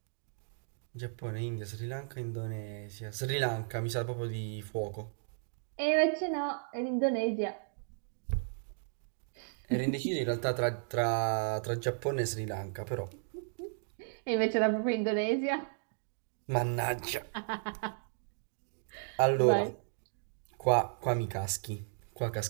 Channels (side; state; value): left; silent; digital silence